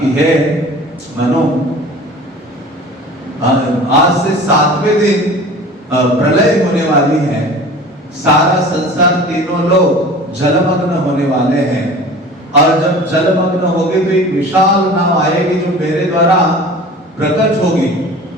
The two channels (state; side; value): normal; both; correlation 0.41